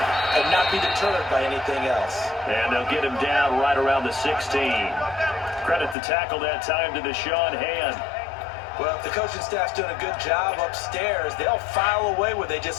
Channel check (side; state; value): right; drops out; at 6.0 s